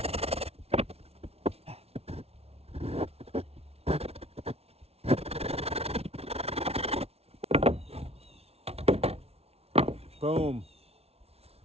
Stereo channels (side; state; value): left; late; 0.30 ms